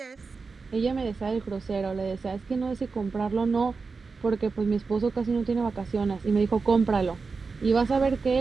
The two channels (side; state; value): left; quieter; 4.5 dB